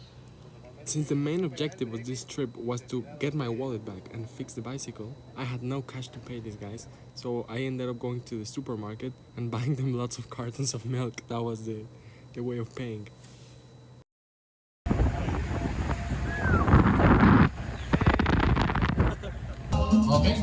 Since the main objective of this trip was to get my wallet back and fix the bicycle, I had no cash to pay these guys, so I ended up going to the supermarket and buying them lots of cartons of milk. That was the way of paying. Ok,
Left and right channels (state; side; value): identical; both; correlation 1.00